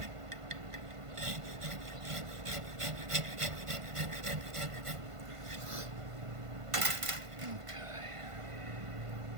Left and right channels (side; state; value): left; late; 1.5 ms